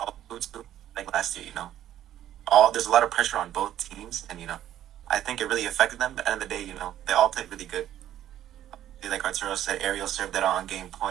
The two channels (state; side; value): quieter; left; 11.9 dB